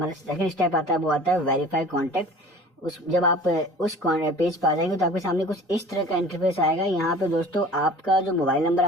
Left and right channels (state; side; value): normal; both; correlation 0.43